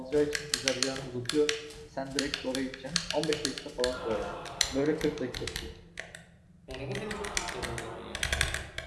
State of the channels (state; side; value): identical; both; correlation 1.00